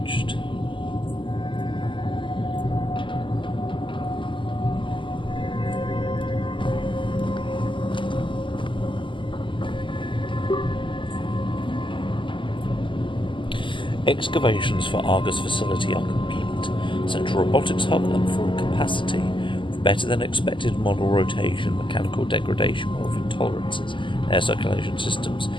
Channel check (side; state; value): right; late; 0.24 ms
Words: Excavations for Argus facility are complete. Central robotics hub at full capacity, with better than expected model rotation, mechanical degradation, wealth intolerances, air circulation systems,